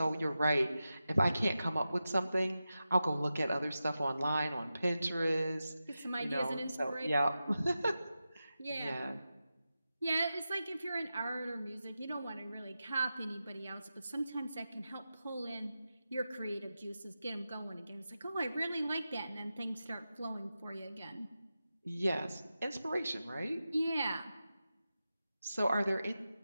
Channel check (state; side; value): inverted; both; correlation -0.92